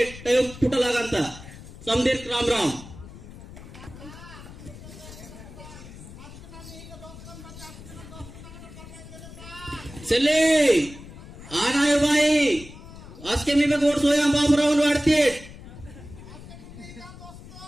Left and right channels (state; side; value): noise; left; rumble, 16 dB below the sound